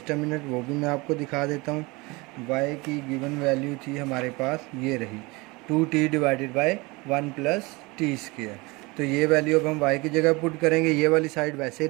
अ मिनट, वो भी मैं आपको दिखा देता हूँ। y की गिवन वैल्यू थी हमारे पास, ये रही 2t divided by 1 plus T square. तो ये वैल्यू अब हम y की जगह पुट करेंगे, ये वाली साइड वैसे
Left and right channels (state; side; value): quieter; left; 24.7 dB